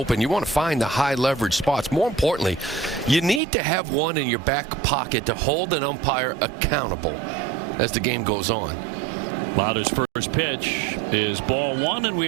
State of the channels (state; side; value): drops out; left; at 3.4 s